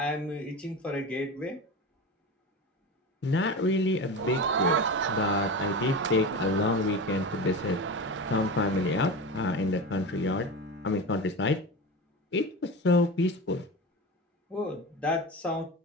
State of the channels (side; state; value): both; normal; correlation 0.27